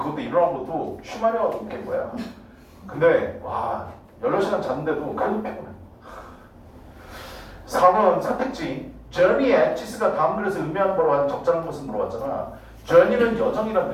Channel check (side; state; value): both; identical; correlation 1.00